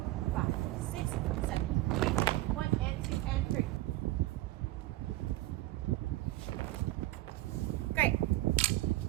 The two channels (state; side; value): quieter; left; 16.9 dB